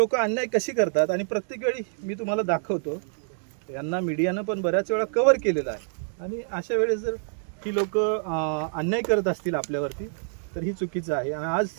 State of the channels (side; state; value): left; silent; digital silence